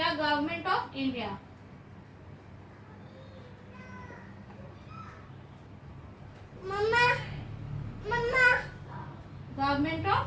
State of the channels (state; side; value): identical; both; correlation 1.00